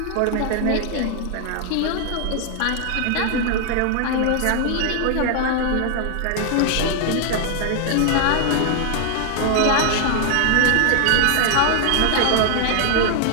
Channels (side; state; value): both; different; correlation 0.00